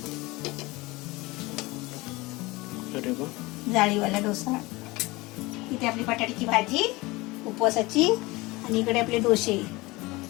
जाळीवाला डोसा. इथे आपली बटाट्याची भाजी उपवासाची आणि इकडे आपले डोसे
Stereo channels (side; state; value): right; quieter; 22.1 dB